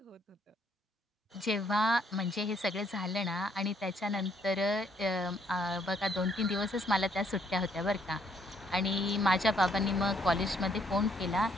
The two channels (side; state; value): both; normal; correlation 0.69